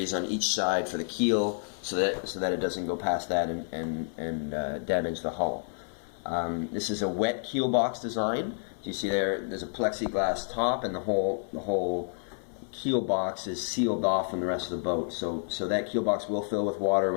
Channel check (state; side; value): silent; right; 57 dB below the other